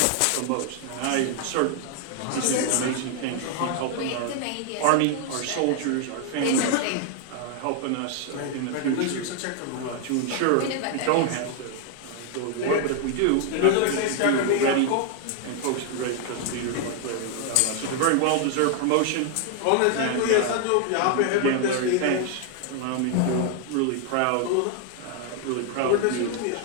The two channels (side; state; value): both; different; correlation 0.00